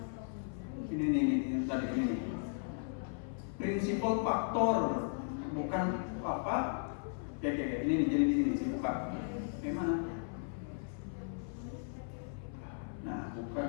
ini tadi ini. Prinsipal faktor bukan apa? Kayak ini nih, jadi di sini sih buka. Gimana? Nah, buka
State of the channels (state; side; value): silent; right; 54 dB below the other